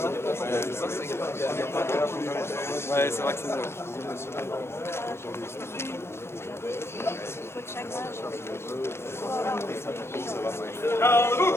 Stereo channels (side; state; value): right; late; 0.12 ms